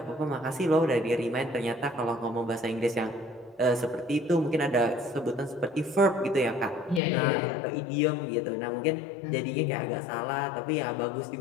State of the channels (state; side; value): drops out; right; at 7.0 s